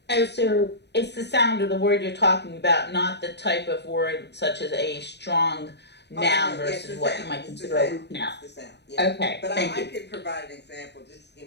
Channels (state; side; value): late; right; 0.50 ms